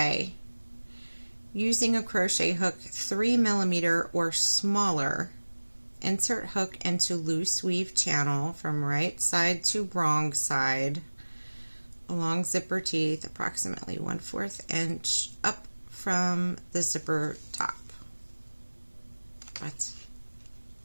Using a crochet hook 3mm or smaller, insert hook into loose weave channel from right side to wrong side along zipper teeth, approximately 1/4 inch up from the zipper top. What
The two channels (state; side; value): inverted; both; correlation -1.00